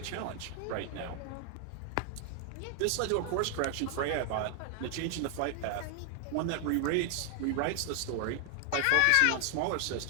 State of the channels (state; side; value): different; both; correlation 0.00